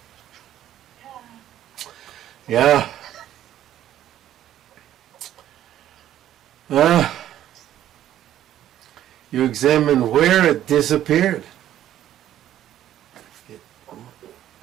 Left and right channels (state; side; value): quieter; left; 11.9 dB